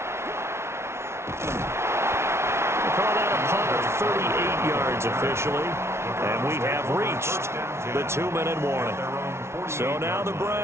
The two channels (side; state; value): left; late; 0.13 ms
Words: Call that a punt of 38 yards officially, and we have reached the 2-minute warning. So now the